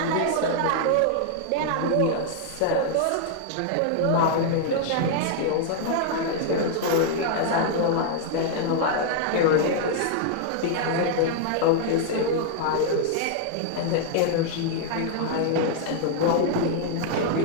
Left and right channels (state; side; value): different; both; correlation 0.00